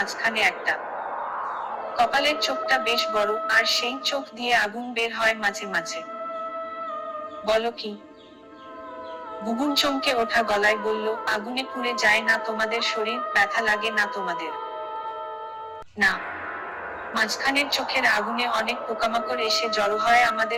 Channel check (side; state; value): both; identical; correlation 1.00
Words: একটা। কপালের চোখটা বেশ বড়, আর সেই চোখ দিয়ে আগুন বের হয় মাঝে মাঝে। বলো কি? বুবুন চমকে ওঠা গলায় বলল, আগুনে পুড়ে যায় না তোমাদের শরীর? ব্যথা লাগে না তোমাদের? না। মাঝখানের চোখের আগুনে অনেক পোকামাকড় এসে জড়ো হয়